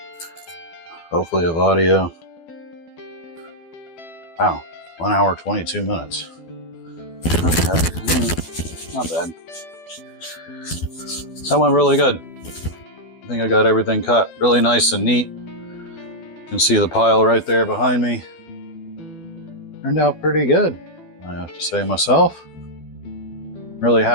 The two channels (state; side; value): late; right; 12 ms